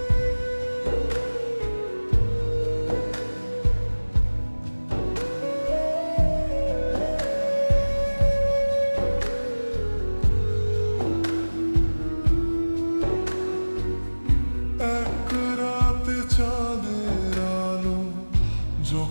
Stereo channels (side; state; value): both; inverted; correlation -1.00